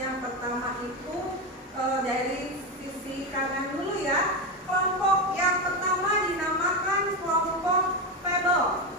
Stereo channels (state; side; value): normal; both; correlation 0.13